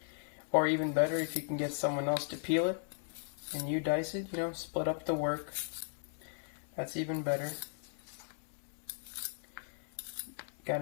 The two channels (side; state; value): right; silent; 53 dB below the other